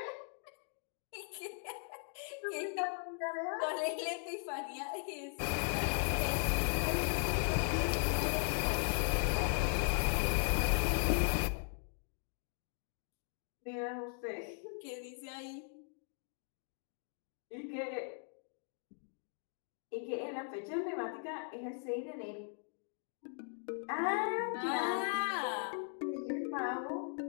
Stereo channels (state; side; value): silent; right; 52 dB below the other